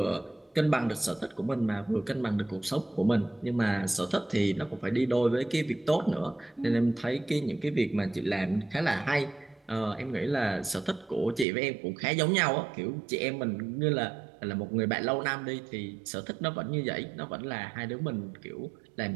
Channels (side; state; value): left; drops out; at 11.5 s